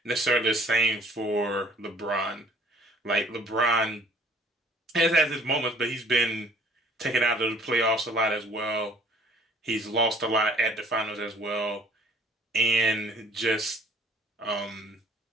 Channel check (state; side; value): normal; both; correlation 0.56